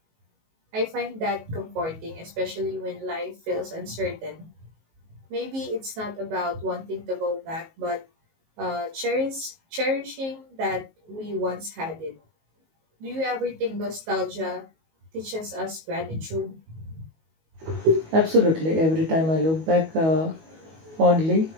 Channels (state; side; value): late; left; 19 ms